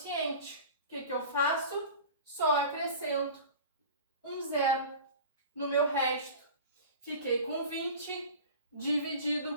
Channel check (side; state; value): both; inverted; correlation -0.37